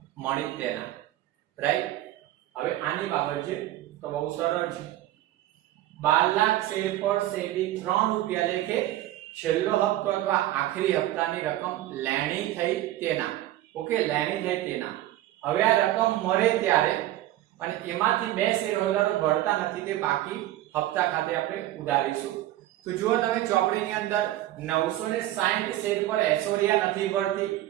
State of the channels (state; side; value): quieter; left; 14.5 dB